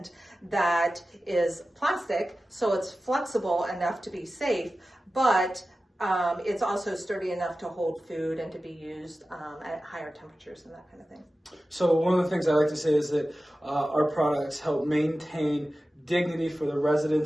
that is plastic, so it's flexible enough to be safe, but it's also sturdy enough to hold food and to be used at higher temperatures and that kind of thing. So one of the things I like to say is that our products help maintain dignity for the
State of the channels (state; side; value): normal; both; correlation 0.95